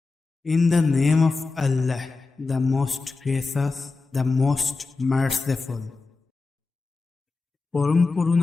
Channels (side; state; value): right; quieter; 3.9 dB